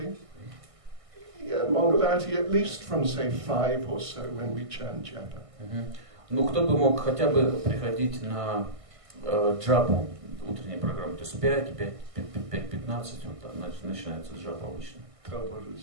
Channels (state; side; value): late; left; 1.6 ms